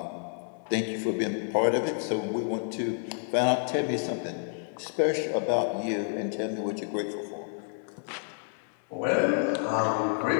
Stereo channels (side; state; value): right; silent; digital silence